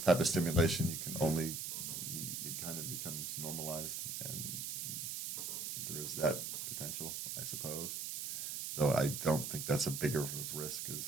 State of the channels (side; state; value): right; noise; hiss, 4 dB below the sound